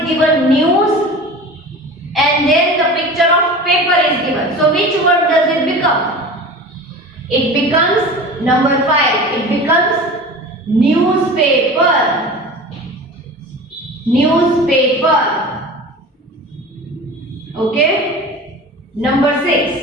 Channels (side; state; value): both; normal; correlation 0.35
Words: given news, and then the picture of paper is given. So which word does it become? It becomes number 5. It becomes newspaper. Newspaper. Okay. Number 6.